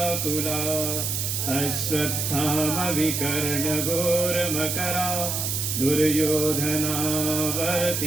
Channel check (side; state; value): right; noise; hiss, 1 dB below the sound